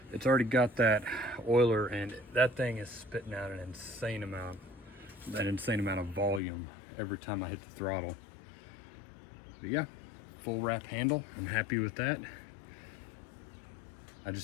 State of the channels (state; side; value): drops out; right; at 6.4 s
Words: It's already got that oiler, and that thing is spitting out an insane amount of volume every time I hit the throttle. But yeah, full wrap handle. I'm happy with that. I